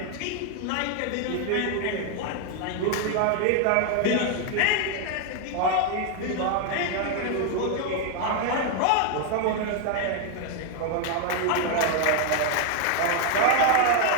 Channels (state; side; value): different; both; correlation 0.01